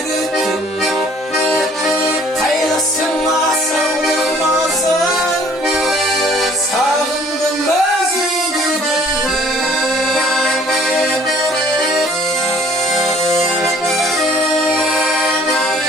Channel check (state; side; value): normal; both; correlation 0.56